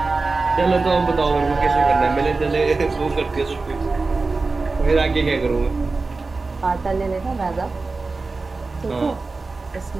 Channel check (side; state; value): left; quieter; 3.8 dB